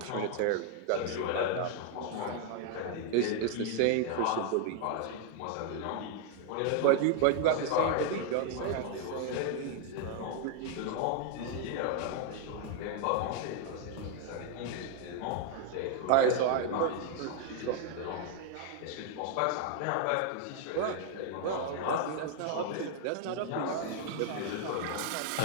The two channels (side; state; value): both; different; correlation 0.00